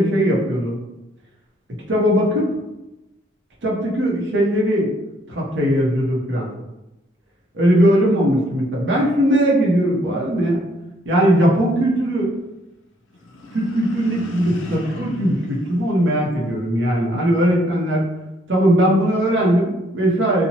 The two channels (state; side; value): normal; both; correlation 0.67